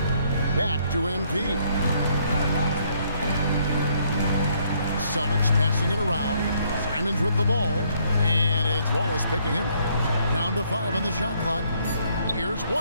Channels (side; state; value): both; inverted; correlation -0.68